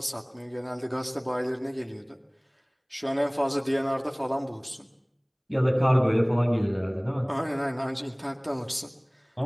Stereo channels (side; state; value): both; identical; correlation 1.00